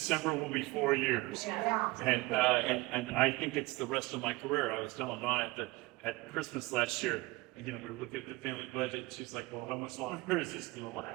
will be 4 years. And I think it's the rest of my career. I was telling Dawn at Christmas last year, we were looking at the family budget, and she's like, well, how much longer is this going to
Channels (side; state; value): left; quieter; 21.7 dB